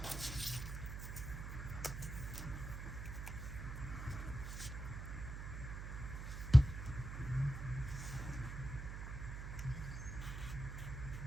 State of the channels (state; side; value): noise; right; hum, 6 dB below the sound